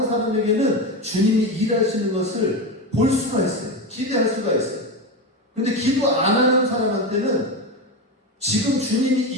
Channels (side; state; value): both; normal; correlation 0.17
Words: 사람에게는 주님이 일하시는 것을 볼 수가 있어요. 기대할 수가 있어요. 그런데 기도 안 하는 사람한테는 지금 주님이